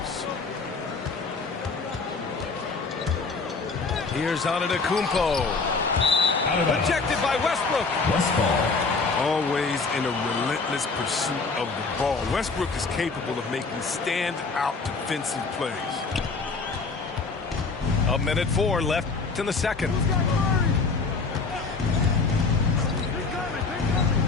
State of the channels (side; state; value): right; quieter; 4.3 dB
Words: Here's Antetokounmpo. Rejected by Westbrook. Always in a relentless pursuit of the ball. Westbrook is capable of making stand-out defensive plays. 1:04 left in the second.